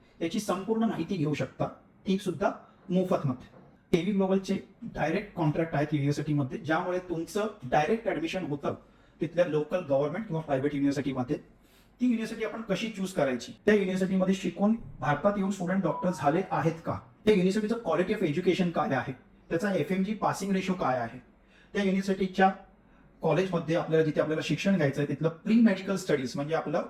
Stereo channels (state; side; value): identical; both; correlation 1.00